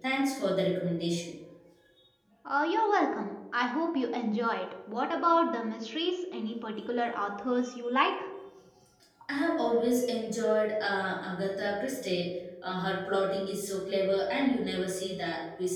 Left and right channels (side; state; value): both; identical; correlation 1.00